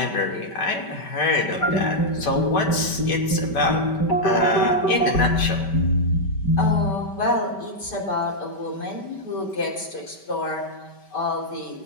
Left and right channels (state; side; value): late; right; 5.2 ms